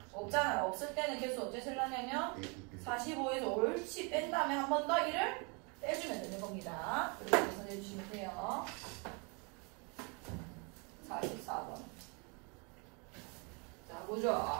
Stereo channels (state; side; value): quieter; left; 33.0 dB